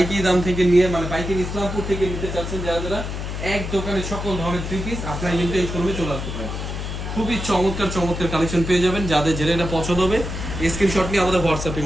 দাম থেকে নিয়ে, মানে পাইকারি ইসলামপুর থেকে নিতে চাচ্ছেন যারা যারা, এক দোকানে সকল ধরনের 3 পিস আপনারা কিন্তু এই শোরুমে চলে আসতে পারেন। খুবই চমৎকার চমৎকার কালেকশন পেয়ে যাবেন। যাদের যেটা এটা পছন্দ হবে স্ক্রিনশট নিয়ে আমাদের হোয়াটসঅ্যাপে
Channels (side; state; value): left; noise; hum, 5 dB below the sound